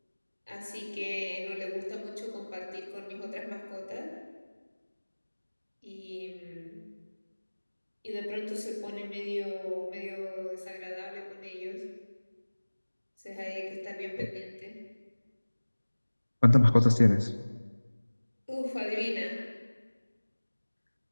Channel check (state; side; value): inverted; both; correlation -1.00